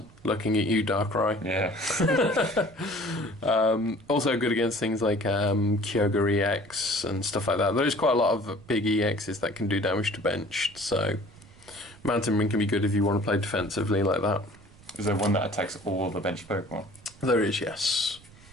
Looking at you, Darkrai. Yeah. Also good against things like Kyogre EX and stuff like that. There's quite a lot of big EXs that can do damage to benched, so Mountain Ring can be good if you want to play defensively like that. Is there one that attacks all the benched Pokemon? There is, yes.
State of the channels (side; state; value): right; noise; rumble, 23 dB below the sound